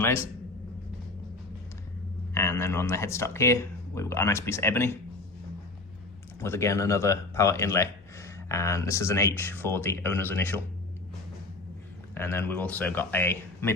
And then on the headstock here, we've got a nice piece of ebony with again another power inlay. And this is an H for the owner's initial. And then we've also got a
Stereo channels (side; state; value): right; quieter; 3.1 dB